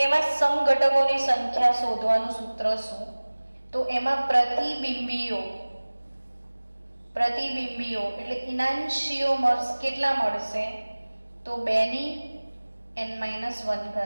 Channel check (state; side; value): inverted; both; correlation -1.00